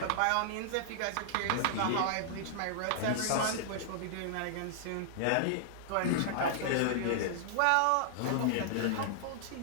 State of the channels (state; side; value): different; both; correlation -0.01